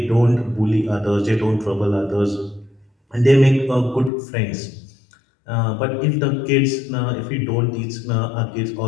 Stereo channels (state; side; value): drops out; right; at 4.1 s